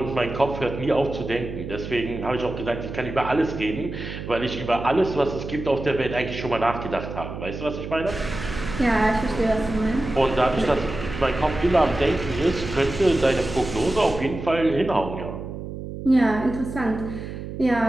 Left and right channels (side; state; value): right; noise; hum, 9 dB below the sound